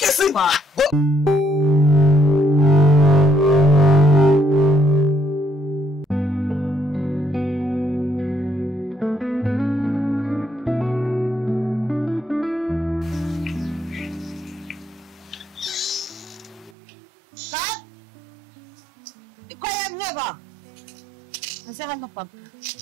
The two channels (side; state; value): left; drops out; at 16.7 s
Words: simba. Ba? Nasaan na pag?